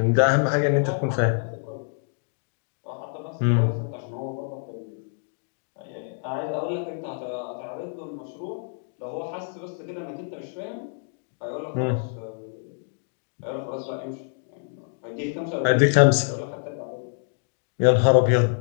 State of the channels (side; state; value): right; silent; digital silence